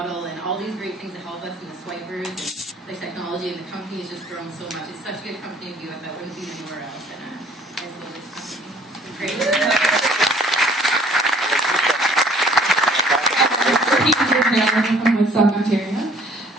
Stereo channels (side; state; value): both; normal; correlation 0.57